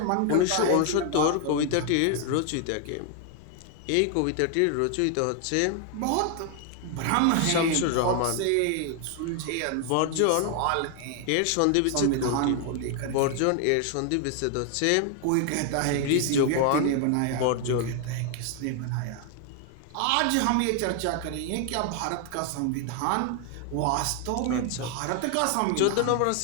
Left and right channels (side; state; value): both; different; correlation 0.00